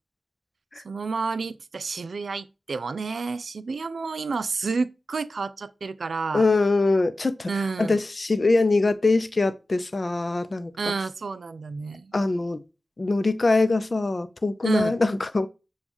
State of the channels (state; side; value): normal; both; correlation 0.94